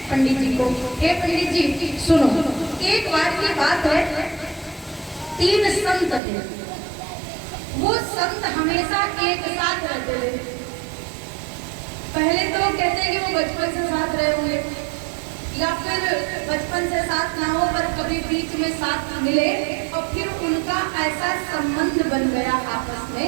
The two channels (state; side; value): drops out; left; at 6.2 s